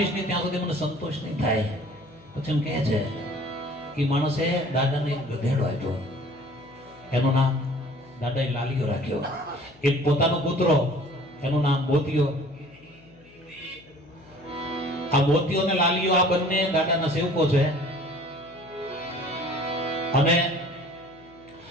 નહીં ત્યાં સુધી મને સંતોષ નહીં થાય. પછી એમ કહે છે કે માણસે દાદાને એક ગધેડો આપ્યો. એનું નામ દાદાએ લાલિયો રાખ્યો. એક પોતાનો કૂતરો, એનું નામ મોતિયો. આ મોતિયો અને લાલિયો આ બંને દાદાના સેવકો છે. અને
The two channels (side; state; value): left; noise; hum, 25 dB below the sound